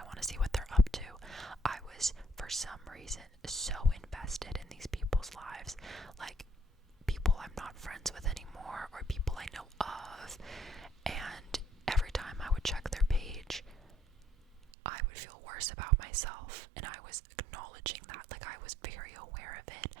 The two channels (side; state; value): left; drops out; at 14.7 s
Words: want to see what they're up to. I was, for some reason, so invested in these people's lives, like people I'm not friends with anymore or people I know of, and every time I would check their page, I would feel worse about myself, and I was acknowledging that, like, I was very aware of it,